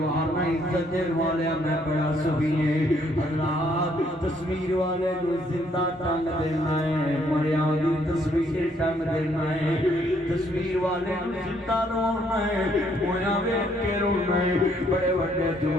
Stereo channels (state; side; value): normal; both; correlation 0.68